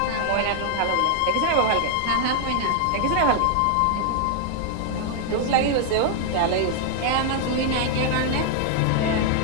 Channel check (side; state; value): both; different; correlation 0.00